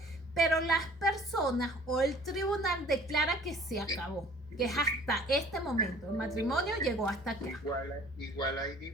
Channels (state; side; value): normal; both; correlation 0.51